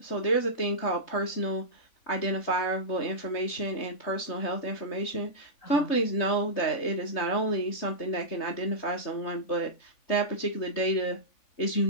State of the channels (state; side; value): late; right; 3.5 ms